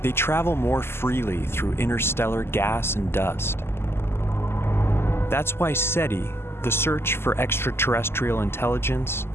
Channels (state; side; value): late; right; 0.12 ms